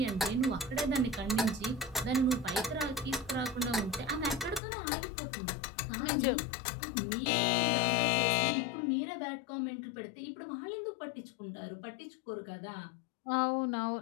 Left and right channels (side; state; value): right; drops out; at 4.6 s